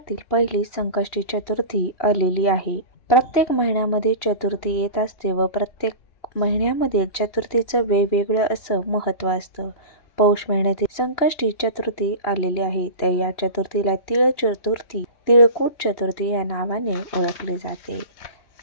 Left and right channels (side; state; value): right; late; 2.8 ms